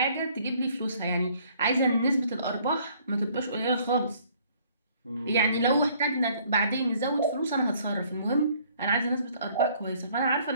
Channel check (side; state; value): both; inverted; correlation -0.61